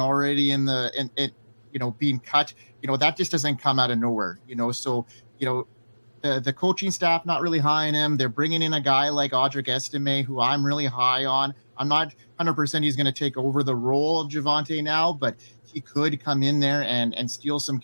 being cut, that just doesn't come out of nowhere. So the coaching staff not really high on him. They're bringing in a guy like Audric Estime, who I'm really high on. I'm not 100% he's going to take over the role of Javonte now, but he could come in there and steal some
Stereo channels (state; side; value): inverted; both; correlation -1.00